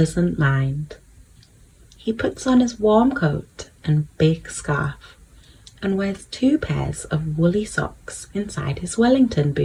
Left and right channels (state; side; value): identical; both; correlation 1.00